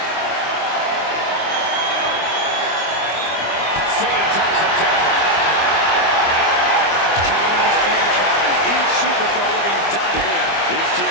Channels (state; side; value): late; right; 25 ms